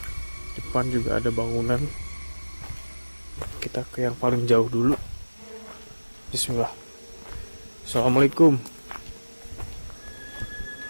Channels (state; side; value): inverted; both; correlation -1.00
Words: depan juga ada bangunan. Kita ke yang paling jauh dulu. Bismillah. Assalamualaikum.